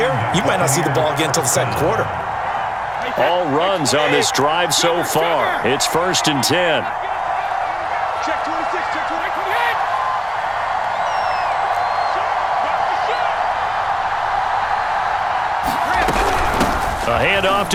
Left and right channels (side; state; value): both; identical; correlation 1.00